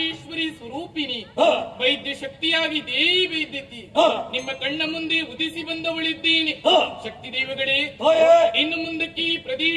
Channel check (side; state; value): both; identical; correlation 1.00